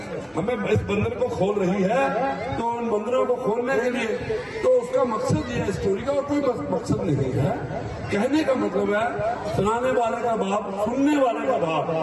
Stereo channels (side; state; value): both; identical; correlation 1.00